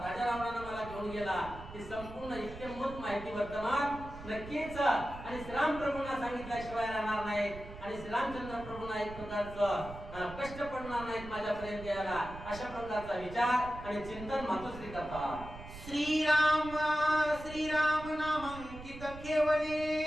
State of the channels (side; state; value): right; noise; rumble, 13 dB below the sound